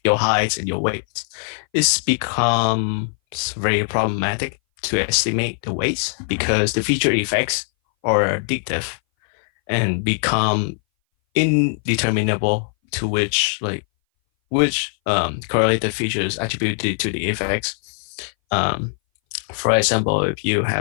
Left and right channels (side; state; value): right; silent; 61 dB below the other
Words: your height and your weight, it's becomes very problematic to estimate the weights because the feature effects are addictive and become indeterminable to which correlated features attributed to the effects. For example, if you